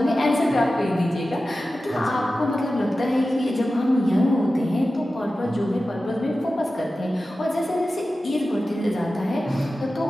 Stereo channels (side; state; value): both; normal; correlation 0.94